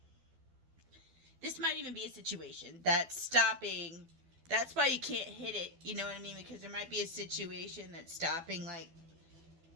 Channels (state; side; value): late; left; 12 ms